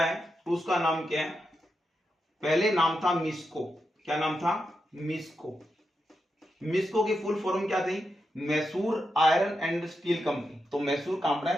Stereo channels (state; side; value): normal; both; correlation 0.87